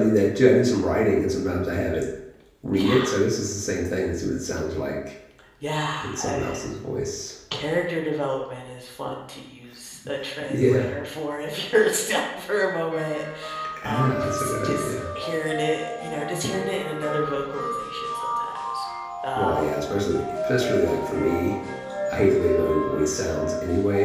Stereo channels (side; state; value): both; identical; correlation 1.00